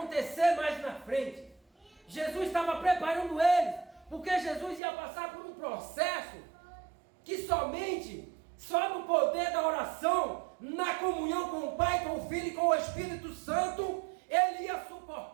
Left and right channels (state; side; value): drops out; left; at 4.8 s